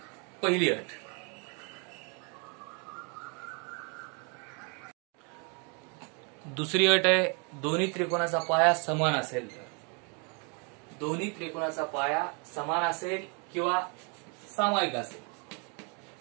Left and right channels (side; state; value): left; quieter; 35.1 dB